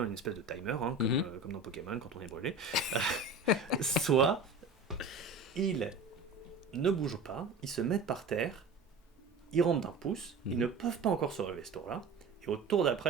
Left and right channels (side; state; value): left; quieter; 3.5 dB